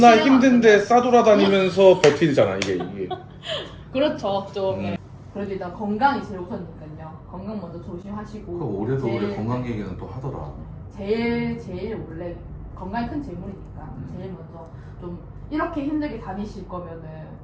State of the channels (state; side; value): identical; both; correlation 1.00